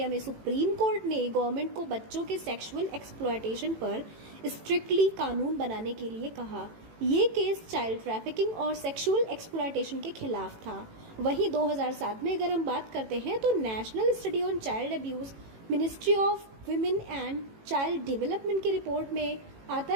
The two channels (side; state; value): left; late; 18 ms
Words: में सुप्रीम कोर्ट ने गवर्नमेंट को बच्चों के सेक्सुअल एक्सप्लॉयटेशन पर स्ट्रिक्टली कानून बनाने के लिए कहा। ये केस चाइल्ड ट्रैफिकिंग और सेक्सुअल एक्सप्लॉयटेशन के खिलाफ था। वहीं 2007 में अगर हम बात करते हैं तो national study on child abuse ministry of women and child development की रिपोर्ट में आता